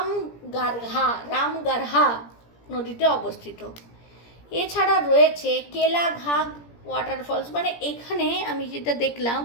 রামগারহা নদীতে অবস্থিত। এছাড়া রয়েছে কেলাঘাঘ ওয়াটারফলস। মানে এখানে আমি যেটা দেখলাম,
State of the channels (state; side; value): late; right; 17 ms